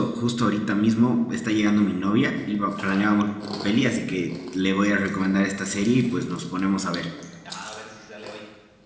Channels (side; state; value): both; identical; correlation 1.00